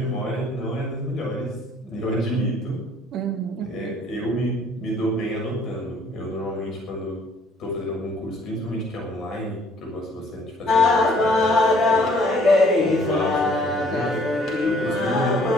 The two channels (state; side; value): normal; both; correlation 0.58